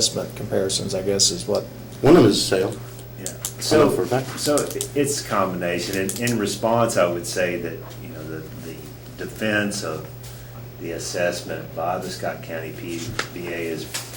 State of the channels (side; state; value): both; identical; correlation 1.00